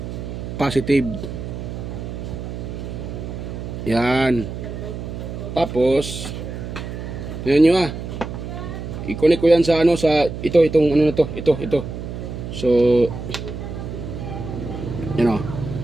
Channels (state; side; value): noise; right; hum, 7 dB below the sound